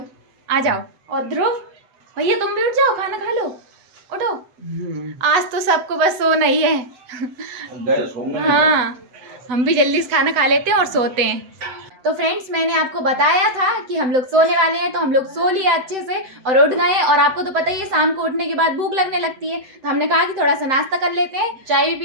आ जाओ। और ध्रुव भैया, तुम भी उठ जाओ, खाना खा लो, उठो। आज तो सबको बस सोना ही है। हाँ, हम भी जल्दी से खाना खा लेते हैं और सोते हैं। तो फ्रेंड्स, मैंने आपको बताया था कि हम लोग सोने वाले हैं, तो हम लोग सो लिया अच्छे से और उठ गए। और आपको तो पता ही है, शाम को उठने के बाद भूख लगने लगती है, तो हमने कहा कि थोड़ा सा नाश्ता कर लेते हैं। चाय भी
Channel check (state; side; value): late; left; 8.0 ms